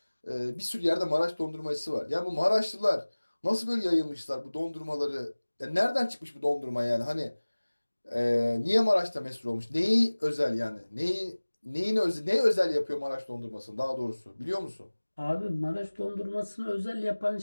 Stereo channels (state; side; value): inverted; both; correlation -1.00